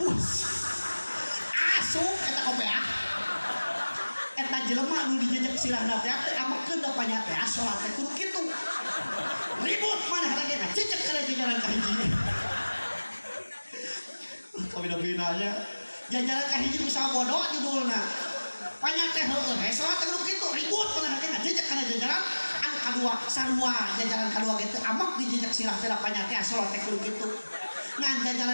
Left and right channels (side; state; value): both; inverted; correlation -1.00